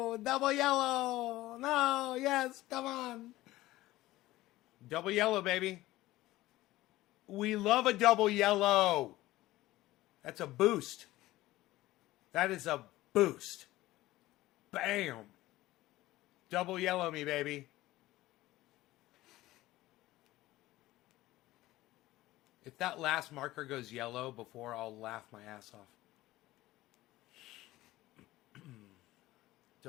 do? Double yellow. No. Yes. Come on. Double yellow, baby. We love a double yellow. That's a boost. That is a boost. Bam. Double yellow me, baby. If that last marker goes yellow before, I'll laugh my ass off.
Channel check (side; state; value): right; quieter; 17.0 dB